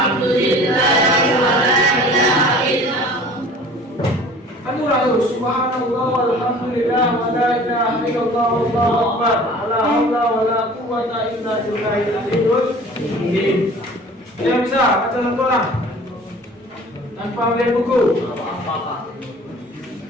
Subhanallah walhamdulillah wa la ilaha illallah wallahu akbar wa la haula wa la quwwata illa billahil aliyyil azim. Yang bisa baca satu orang tanpa melihat buku.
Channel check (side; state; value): both; normal; correlation 0.46